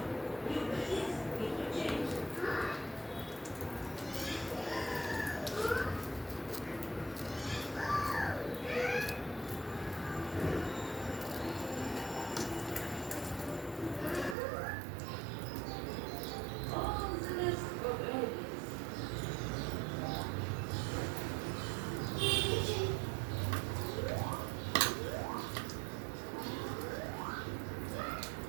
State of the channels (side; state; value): left; drops out; at 14.4 s